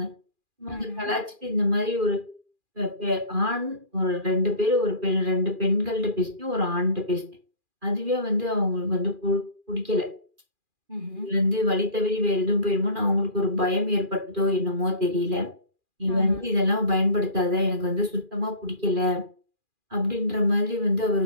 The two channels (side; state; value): left; late; 2.4 ms